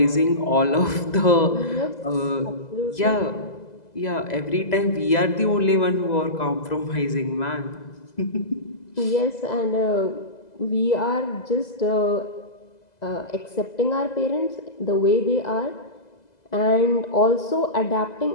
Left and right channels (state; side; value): late; right; 2.0 ms